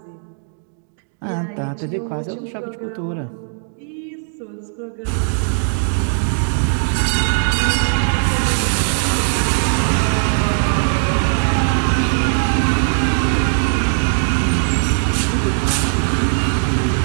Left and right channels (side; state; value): left; silent; digital silence